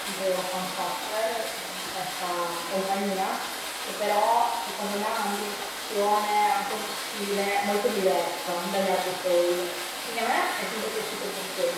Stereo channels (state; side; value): identical; both; correlation 1.00